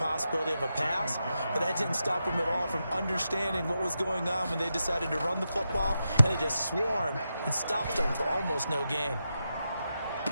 of a pass, but that didn't stop them at all from understanding what was going on when they decided to run the football, and they just swarmed and stopped them for almost no gain.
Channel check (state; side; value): inverted; both; correlation -0.88